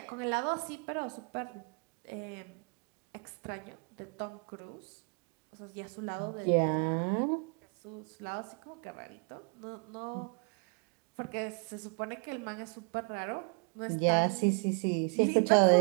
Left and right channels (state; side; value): quieter; left; 36.6 dB